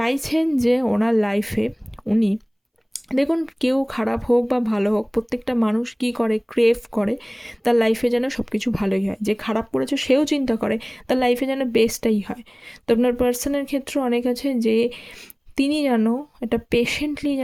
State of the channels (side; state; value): both; identical; correlation 1.00